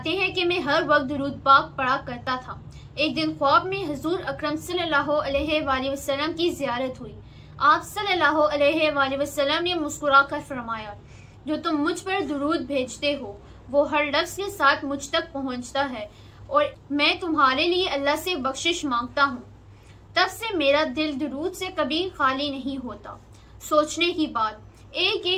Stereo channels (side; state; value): both; identical; correlation 1.00